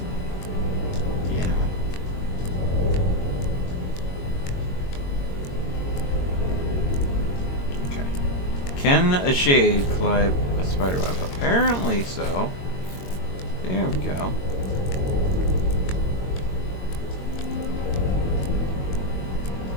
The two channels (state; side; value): late; right; 22 ms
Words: Can a shade climb a spider web? Apparently so. There we go.